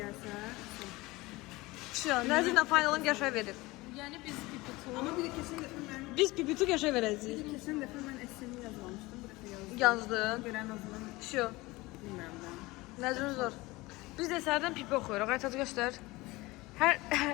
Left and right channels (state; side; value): quieter; right; 21.1 dB